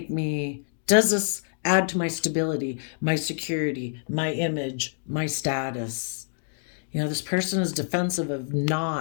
add to my stability, my security, my image, my status? You know, this person is defensive of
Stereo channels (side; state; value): right; silent; digital silence